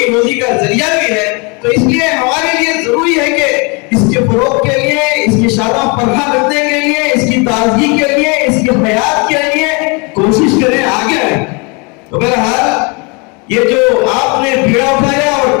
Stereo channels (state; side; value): quieter; right; 31.3 dB